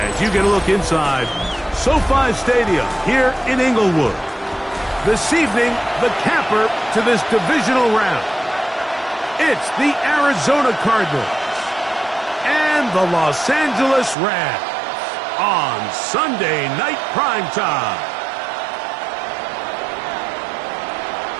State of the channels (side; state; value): left; drops out; at 14.2 s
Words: you get a look inside SoFi Stadium here in Inglewood. This evening, the capper to this divisional round. It's the Arizona Cardinals and the Los Angeles Rams on Sunday Night Primetime.